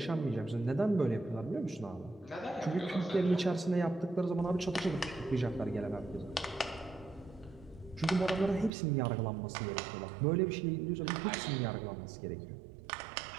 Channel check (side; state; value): left; drops out; at 8.7 s